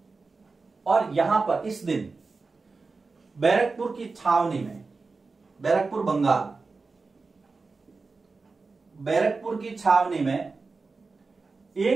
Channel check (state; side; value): quieter; left; 4.1 dB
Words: और यहां पर इस दिन बैरकपुर की छावनी में, बैरकपुर बंगाल, बैरकपुर की छावनी में